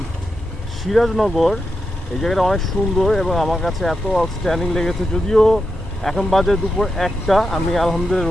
সিরাজনগর। এই জায়গাটা অনেক সুন্দর এবং আমার কাছে এত আউটস্ট্যান্ডিং লেগেছে। যদিও এখন বাজে দুপুর একটা, আমি আলহামদুলিল্লাহ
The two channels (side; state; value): both; normal; correlation 0.87